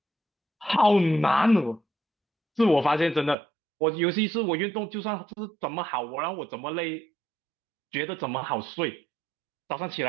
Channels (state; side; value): drops out; left; at 3.4 s